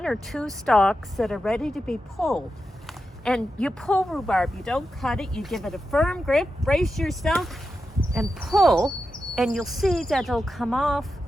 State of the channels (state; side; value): normal; both; correlation 0.89